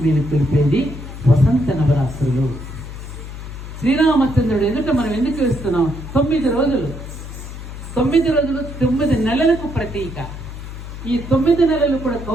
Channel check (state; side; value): noise; left; hum, 11 dB below the sound